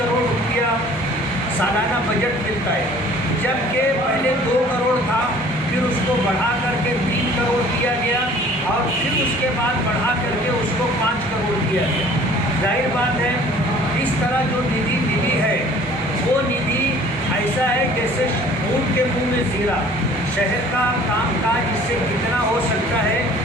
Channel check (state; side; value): normal; both; correlation 0.51